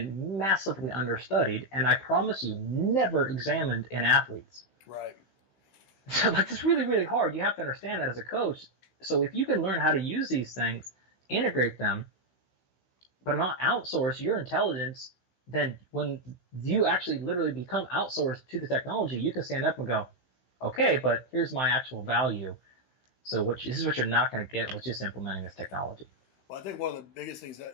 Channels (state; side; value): late; right; 16 ms